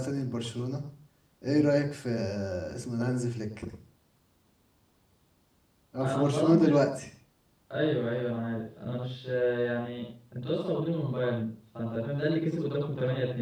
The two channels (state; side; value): identical; both; correlation 1.00